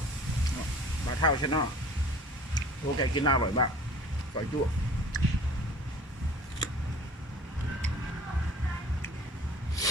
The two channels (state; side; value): normal; both; correlation 0.46